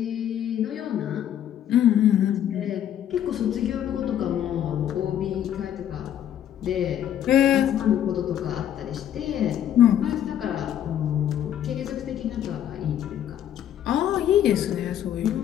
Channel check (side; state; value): right; quieter; 10.5 dB